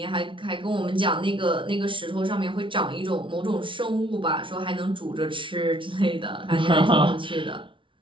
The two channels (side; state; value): left; late; 0.25 ms